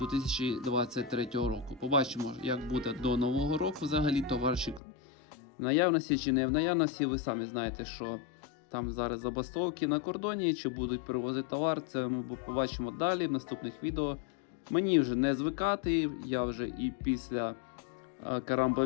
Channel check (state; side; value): drops out; right; at 4.8 s